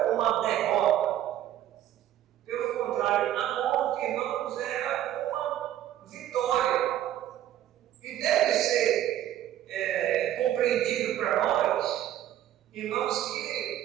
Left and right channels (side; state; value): left; quieter; 12.1 dB